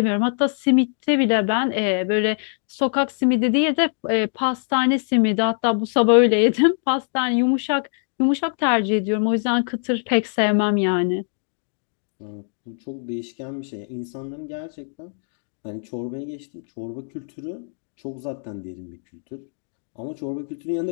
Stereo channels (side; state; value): right; silent; digital silence